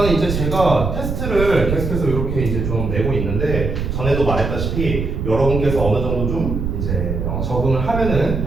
이제 제가 테스트를 계속해서 이렇게 이제 좀 내고 있는데 전에도 말했다시피 여러분께서 어느 정도 좀 이제 적응을 하면은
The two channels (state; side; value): noise; right; rumble, 3 dB below the sound